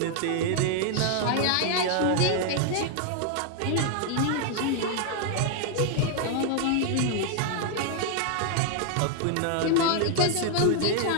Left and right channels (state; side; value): different; both; correlation 0.00